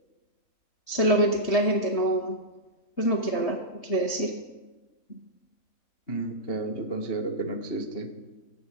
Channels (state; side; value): late; right; 3.2 ms